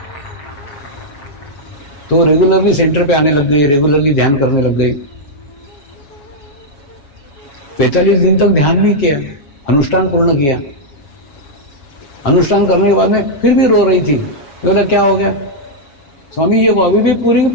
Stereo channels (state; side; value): late; right; 7.3 ms